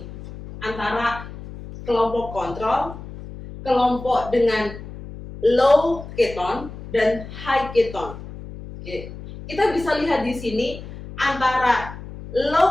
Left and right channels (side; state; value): left; noise; hum, 13 dB below the sound